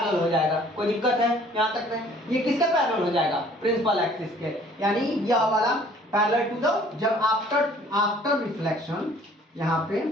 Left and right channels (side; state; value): both; normal; correlation 0.55